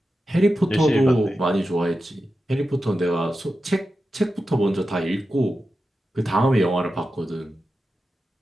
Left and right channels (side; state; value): both; normal; correlation 0.91